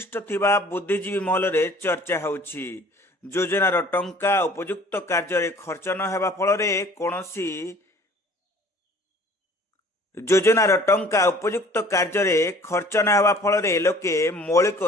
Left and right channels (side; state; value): both; normal; correlation 0.52